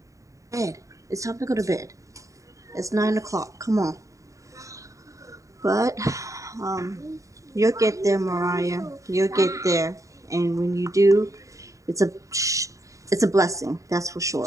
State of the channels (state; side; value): late; left; 0.16 ms